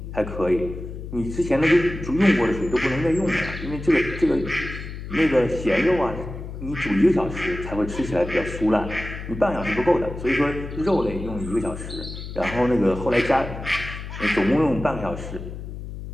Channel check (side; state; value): left; noise; hum, 9 dB below the sound